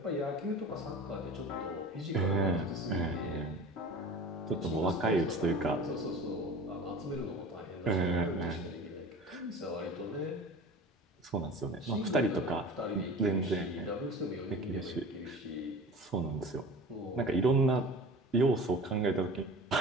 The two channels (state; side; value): normal; both; correlation 0.39